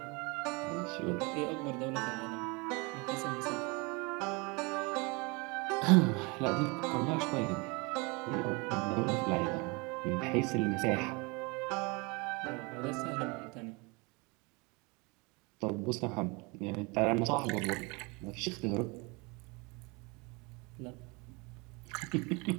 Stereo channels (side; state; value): left; quieter; 28.0 dB